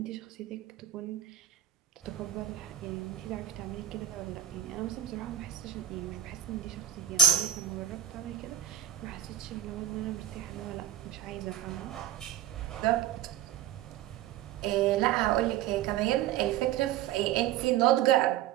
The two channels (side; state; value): left; quieter; 11.2 dB